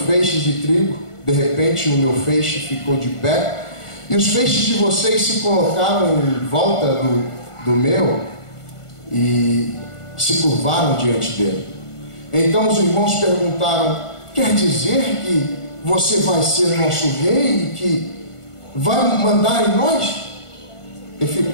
de trigo. De repente o meu feixe ficou de pé e os feixes de vocês se colocaram em volta do meu e se curvaram diante dele. Então os irmãos perguntaram: quer dizer que você vai ser nosso rei e que vai mandar em nós? E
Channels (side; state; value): right; late; 1.4 ms